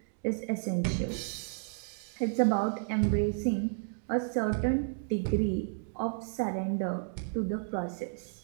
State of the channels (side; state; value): left; silent; digital silence